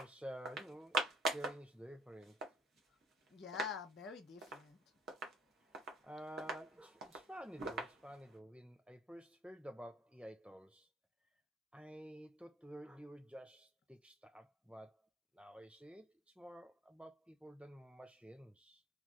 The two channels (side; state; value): both; normal; correlation 0.57